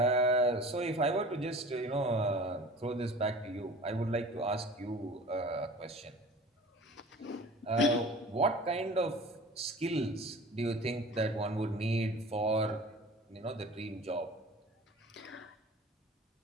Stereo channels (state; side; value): normal; both; correlation 0.42